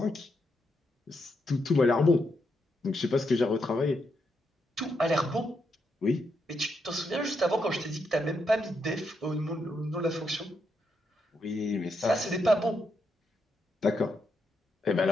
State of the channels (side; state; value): both; normal; correlation 0.81